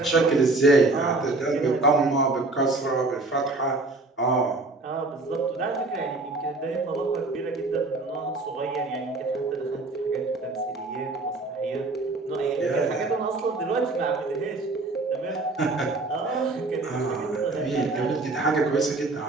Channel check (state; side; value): quieter; left; 3.2 dB